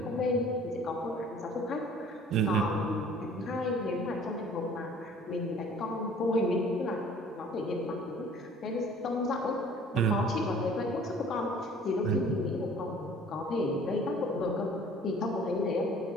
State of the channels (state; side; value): normal; both; correlation 0.51